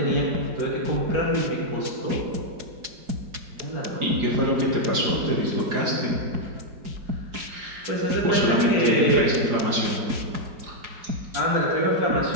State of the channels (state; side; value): late; left; 4.9 ms